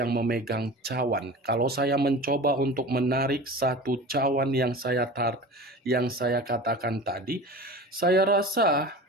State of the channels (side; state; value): both; normal; correlation 0.35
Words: memegang cawan. Kalau saya mencoba untuk menarik satu cawan yang saya katakan tadi, saya rasa